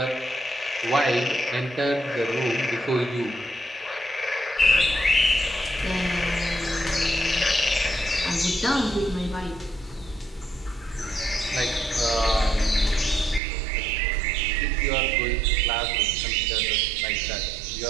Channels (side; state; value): left; drops out; at 13.4 s